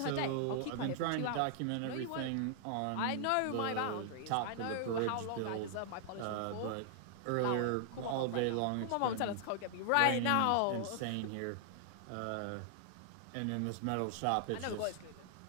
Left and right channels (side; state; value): both; different; correlation 0.00